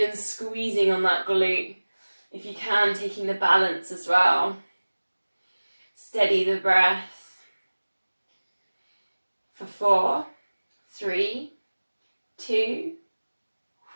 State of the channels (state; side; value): inverted; both; correlation -1.00